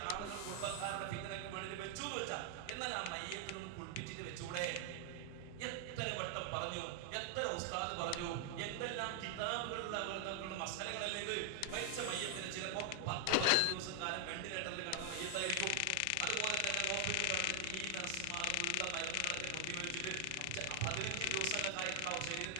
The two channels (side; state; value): both; different; correlation 0.00